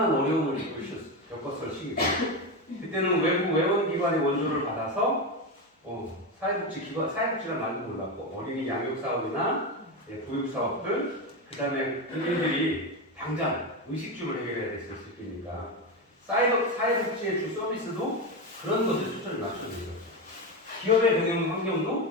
어려움을 겪었을 시기고 그때는 외부 외원기관의 원조를 받아서 사회복지란 말도 몰랐고 어린이 양육 사업이나 보육 사업들 그 다음에 국민들이 당장 의식주를 해결해야 됐을 때니까 사회복지의 주 서비스도 그런 것에 초점을 맞춰야 돼요. 기업의 경영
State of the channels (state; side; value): normal; both; correlation 0.15